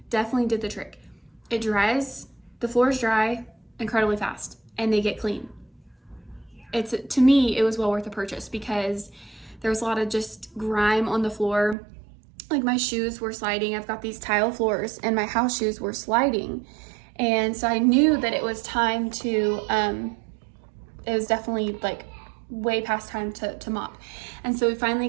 definitely did the trick. It dries, the floors dry incredibly fast, and they get clean. To me, it was well worth the purchase because there was a lot of just grime on the floor. Like my shoes were sliding. I've got these tile floors, and my house shoes were sliding. And so I knew that it was time to, it was definitely like way past time to mop. And so we finally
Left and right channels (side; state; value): left; drops out; at 11.8 s